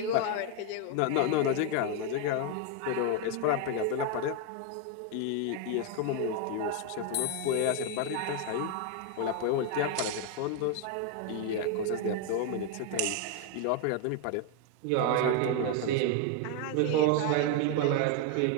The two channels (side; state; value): both; different; correlation 0.01